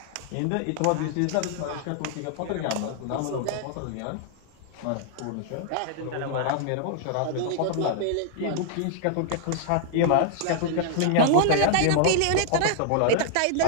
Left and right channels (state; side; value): different; both; correlation 0.00